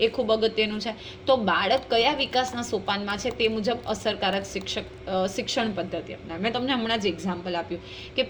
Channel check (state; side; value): identical; both; correlation 1.00